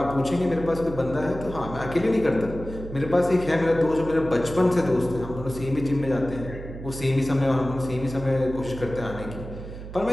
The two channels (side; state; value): right; noise; hum, 11 dB below the sound